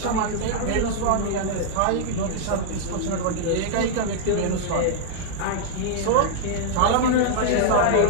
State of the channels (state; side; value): different; both; correlation -0.01